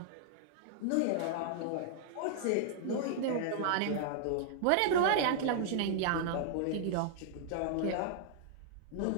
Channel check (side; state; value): both; different; correlation -0.01